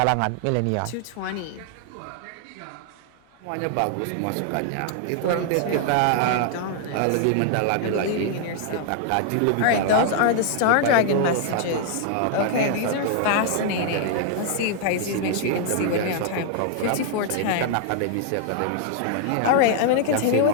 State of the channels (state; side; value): different; both; correlation 0.00